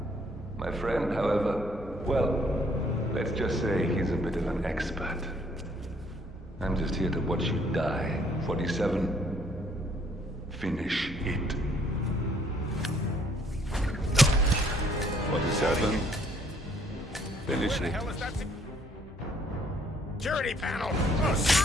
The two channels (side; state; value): both; normal; correlation 0.64